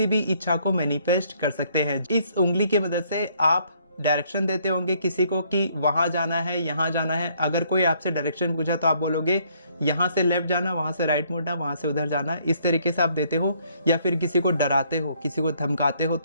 भी इच्छा को मैनिफेस्ट कर सकते हैं। इस उंगली की मदद से आप डायरेक्शन देते होंगे किसी को कि वहां जाना है, यहाँ जाना है। अगर कोई आपसे डायरेक्शन पूछा तो आप बोलोगे यहाँ से लेफ्ट जाना, वहां से राइट मुड़ना, वहां से उधर जाना। इस तरीके से आप देते हो। या फिर किसी को डराते हो, किसी को धमकाते हो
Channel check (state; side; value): inverted; both; correlation -0.66